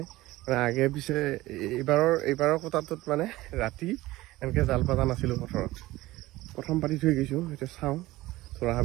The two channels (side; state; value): left; quieter; 18.1 dB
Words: মানে আগে পিছে এইবাৰৰ কোটাটোত মানে ৰাতি এনেকৈ জাল পাতা নাছিলোঁ পথৰত প্ৰথম পাতি থৈ গৈছোঁ এতিয়া চাওঁ থোৰা